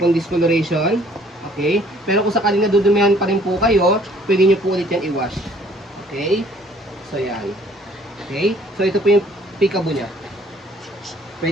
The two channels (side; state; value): both; normal; correlation 0.58